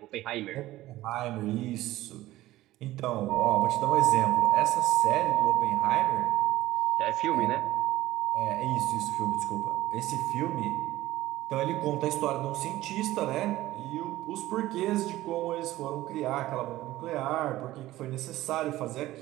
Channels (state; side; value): quieter; left; 16.1 dB